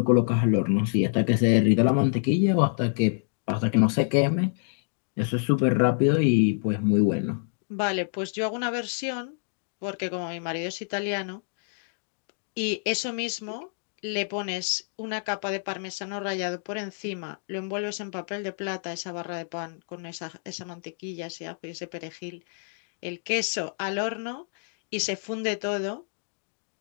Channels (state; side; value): silent; right; digital silence